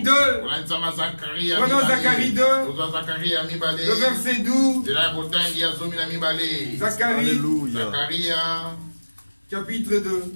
2. Prenons Zacharie 2. Le verset 12. Zacharie. Chapitre 2.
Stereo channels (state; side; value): inverted; both; correlation -1.00